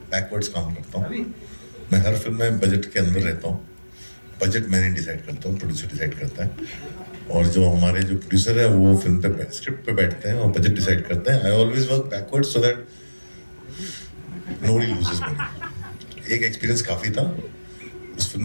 बैकवर्ड्स काम करता हूँ. मैं हर फिल्म में बजट के अंदर रहता हूँ. बजट मैंने डिसाइड करता हूँ, प्रोड्यूसर डिसाइड करता है. और जो हमारे जो प्रोड्यूसर है वो फिल्म पे स्क्रिप्ट पे बैठते हैं और बजट डिसाइड करते हैं. I always work backwards so that nobody loses money. एक एक्सपीरियंस काफी था. उस फिल्म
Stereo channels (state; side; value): inverted; both; correlation -1.00